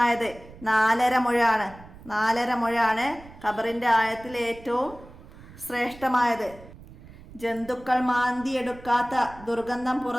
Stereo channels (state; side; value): noise; right; rumble, 19 dB below the sound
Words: 4.5 മുഴമാണ്. 4.5 മുഴമാണ് ഖബറിൻ്റെ ആഴത്തിൽ ഏറ്റവും ശ്രേഷ്ഠമായത്. ജന്തുക്കൾ മാന്തിയെടുക്കാത്ത, ദുർഗന്ധം